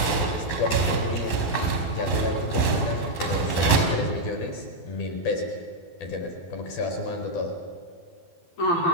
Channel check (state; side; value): late; right; 11 ms